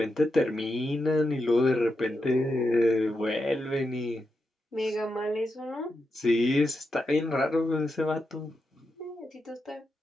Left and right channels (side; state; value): both; normal; correlation 0.86